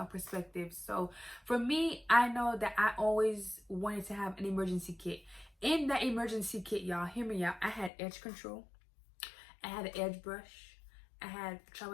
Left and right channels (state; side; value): drops out; right; at 7.9 s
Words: perspective. So for me, I know that I always wanted to have an emergency kit. In that emergency kit, y'all, hear me out, I had edge control, I had an edge brush, I had